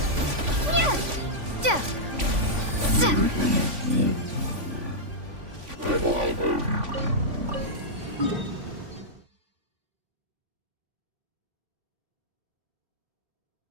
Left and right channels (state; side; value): late; left; 3.5 ms